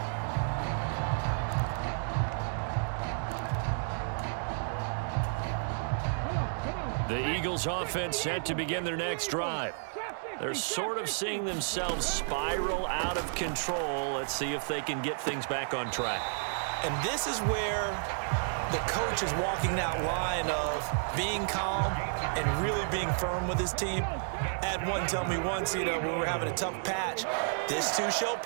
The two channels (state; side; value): silent; left; digital silence